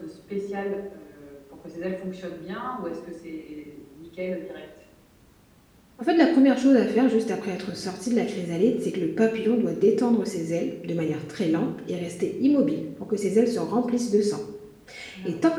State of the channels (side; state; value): both; identical; correlation 1.00